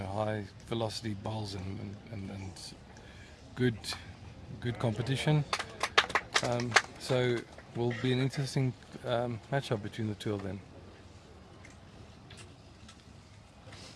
velocity bowls and good competition. So will be an interesting matchup between the two of them.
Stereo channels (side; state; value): both; identical; correlation 1.00